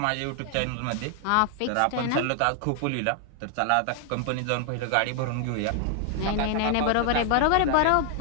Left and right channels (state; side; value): different; both; correlation 0.00